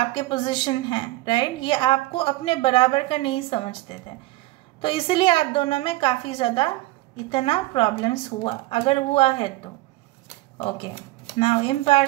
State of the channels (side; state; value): left; quieter; 18.8 dB